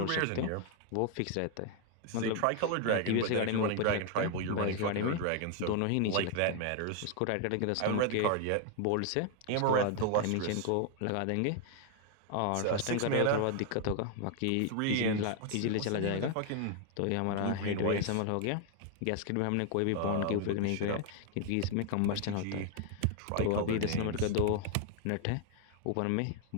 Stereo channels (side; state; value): both; different; correlation 0.00